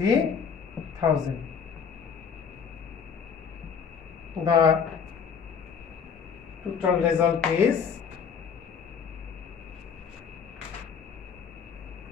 The total result is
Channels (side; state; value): right; quieter; 6.7 dB